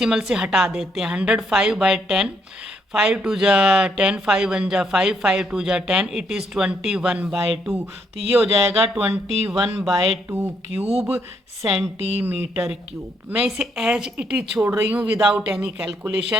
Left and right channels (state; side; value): normal; both; correlation 0.73